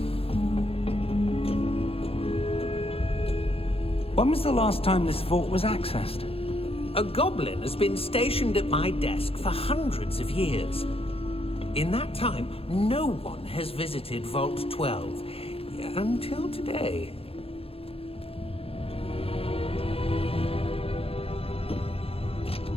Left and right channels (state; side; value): late; right; 0.28 ms